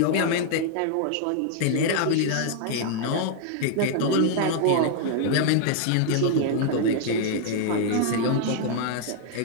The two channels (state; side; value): different; both; correlation 0.00